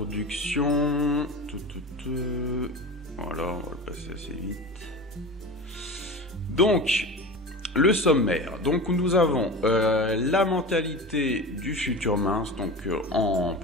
Voilà, on va le passer assez vite. Donc, le sommaire. Donc, nous avons la mentalité du futur mince, donc en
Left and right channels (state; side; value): normal; both; correlation 0.30